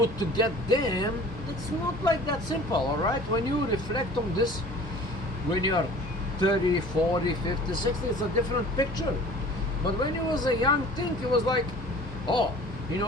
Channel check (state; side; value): normal; both; correlation 0.45